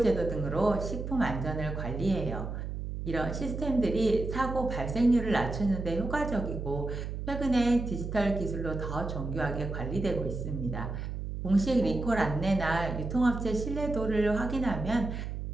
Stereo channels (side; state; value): right; noise; hum, 5 dB below the sound